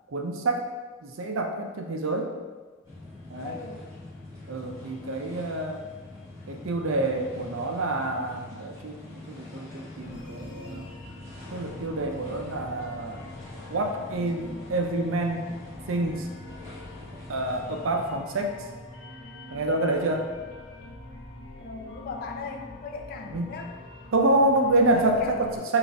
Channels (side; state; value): both; normal; correlation -0.15